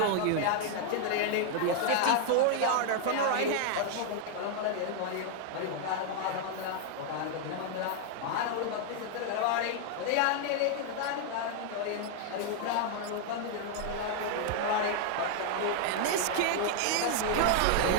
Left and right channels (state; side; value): different; both; correlation 0.00